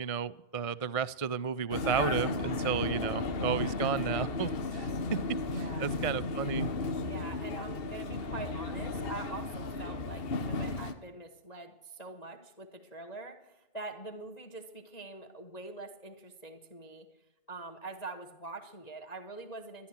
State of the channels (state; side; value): late; right; 1.6 ms